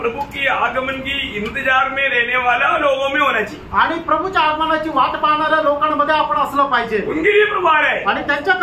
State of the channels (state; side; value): identical; both; correlation 1.00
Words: की आगमन की इंतजार में रहने वाला लोगों में होना चाहिए, आणि प्रभूच्या आगमनाची वाट पाहणाऱ्या लोकांमध्ये आपण असलं पाहिजे। उनके लिए प्रभु आ रहा है आणि